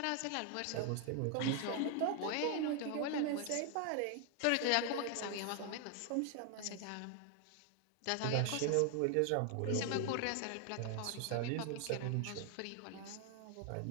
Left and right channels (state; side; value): different; both; correlation 0.00